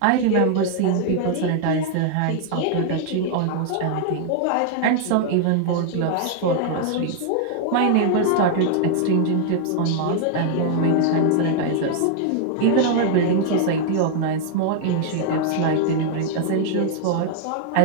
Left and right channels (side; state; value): both; different; correlation 0.00